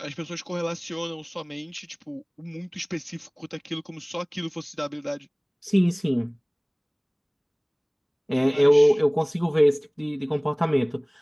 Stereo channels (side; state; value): both; identical; correlation 1.00